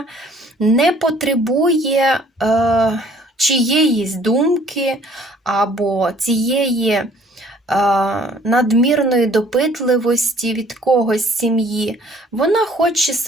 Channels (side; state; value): both; normal; correlation 0.57